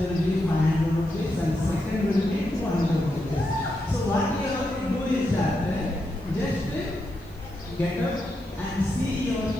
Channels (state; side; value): noise; right; hiss, 28 dB below the sound